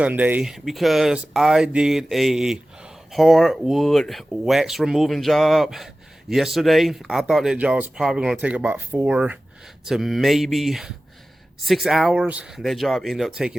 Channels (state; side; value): normal; both; correlation 0.96